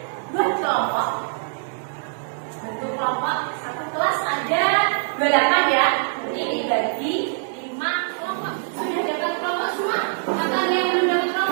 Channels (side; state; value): left; silent; digital silence